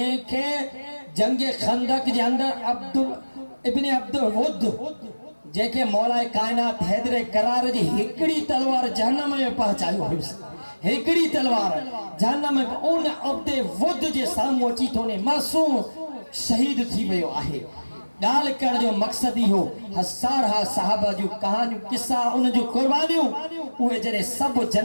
जंग खंदक जे अंदर अब्दुल वुद जेके मौलाए कायनात हैदर करार जी हिकड़ी तलवार जहन्नम में पहुंचायो हुयुसि, हिकड़ी तलवार जहन्नम में उन अब्दे वुद जे साम्हूं अची थो ने मासूम शहीद थी वियो आहे। ॻाल्हि करण जो मक़सद ई हो हज़ार साहबा जूं कहानियूं किस्सा उन जूं कुर्बानियूं उहे जॾहिं सभु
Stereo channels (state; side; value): inverted; both; correlation -1.00